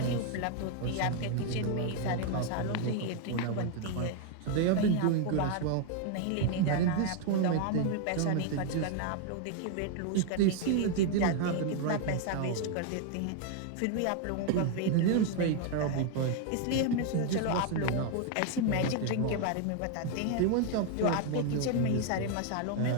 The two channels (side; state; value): both; different; correlation 0.00